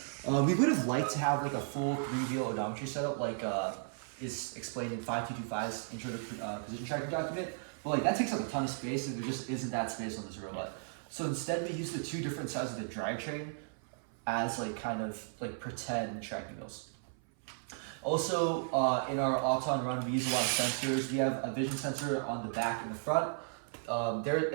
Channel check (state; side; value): silent; left; 54 dB below the other